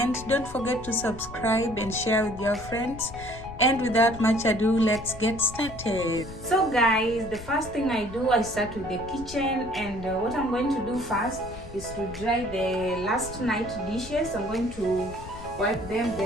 Don't forget to subscribe and share with your friends. And without much ado, let's get started. So guys, the first thing I do, I start with the kitchen, and what I'm going to do first is to dry the last night dishes. I'm going to wipe them,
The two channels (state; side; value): noise; left; rumble, 14 dB below the sound